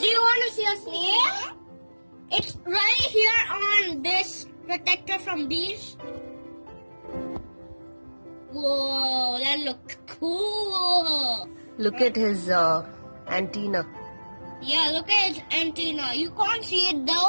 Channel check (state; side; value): inverted; both; correlation -1.00